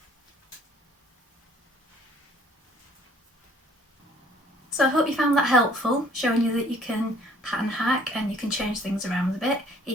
So I hope you found that helpful, showing you that you can pattern hack and you can change things around a bit,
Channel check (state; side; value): normal; both; correlation 0.57